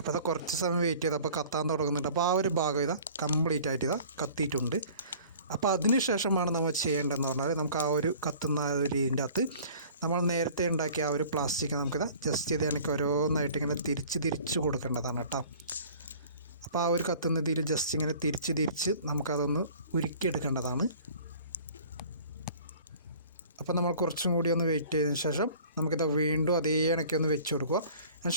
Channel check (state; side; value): inverted; both; correlation -0.48